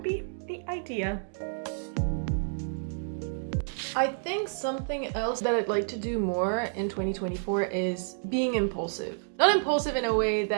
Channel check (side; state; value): left; silent; digital silence